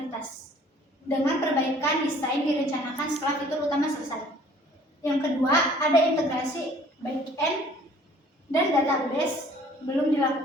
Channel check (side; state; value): both; normal; correlation 0.54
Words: Dengan perbaikan desain direncanakan setelah fitur utama selesai. Yang kedua, ada integrasi back-end dan database belum